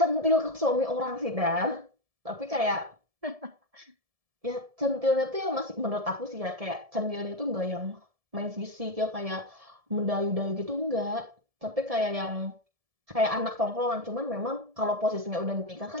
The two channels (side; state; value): left; late; 1.7 ms